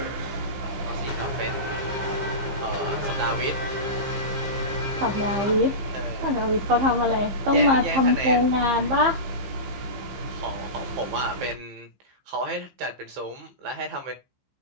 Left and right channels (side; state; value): left; late; 15 ms